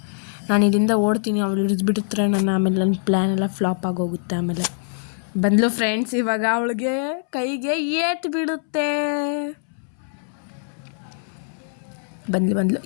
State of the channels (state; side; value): silent; right; 63 dB below the other